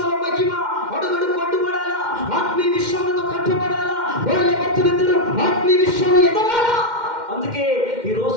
మహిమ అడుగుడు కొట్టుబడాలా, ఆత్మీయ విషయంలో కట్టబడాలా, భర్తలిద్దరూ ఆత్మీయ విషయంలో ఎదగాలా. అందుకే ఈ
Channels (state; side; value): late; left; 2.1 ms